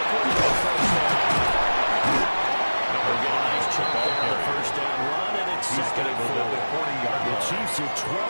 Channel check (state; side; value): inverted; both; correlation -1.00